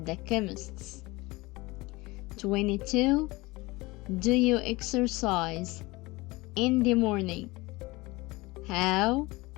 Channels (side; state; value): right; quieter; 22.2 dB